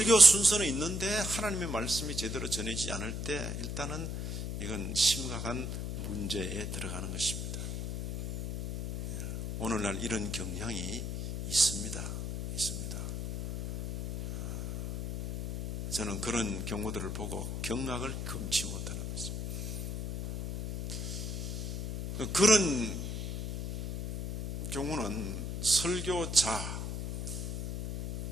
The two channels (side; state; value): left; noise; hum, 4 dB below the sound